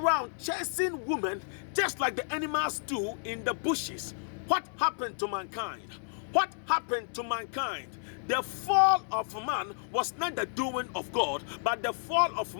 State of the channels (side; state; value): right; silent; digital silence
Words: chasing women just like the animals do in the bushes. What happened to mankind? What happened to mankind? The fall of man was not the doing of God, but the fall of